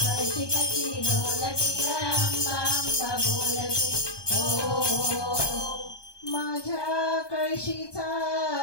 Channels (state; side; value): late; right; 1.2 ms